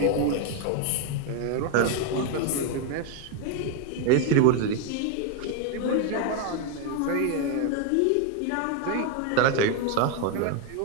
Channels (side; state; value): both; different; correlation 0.01